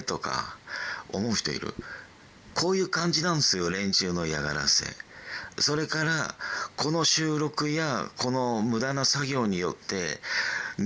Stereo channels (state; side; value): identical; both; correlation 1.00